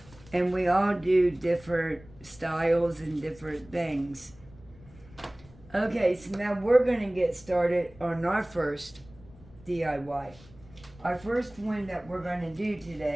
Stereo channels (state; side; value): noise; left; rumble, 23 dB below the sound